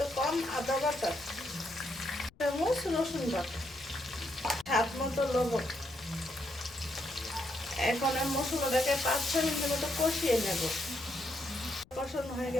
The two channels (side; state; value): left; noise; rumble, 27 dB below the sound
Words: কম আদা বাটা, চামচ রসুন বাটা, স্বাদ মতো লবণ। এখন আমি মশলাটাকে 5-6 মিনিটের মতো কষিয়ে নেব। কষানো হয়ে